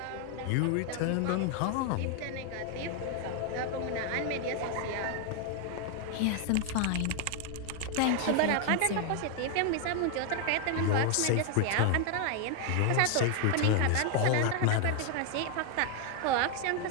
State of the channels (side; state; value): both; different; correlation 0.00